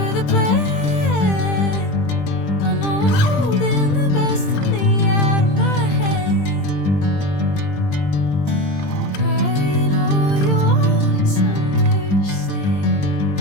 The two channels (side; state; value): right; late; 20 ms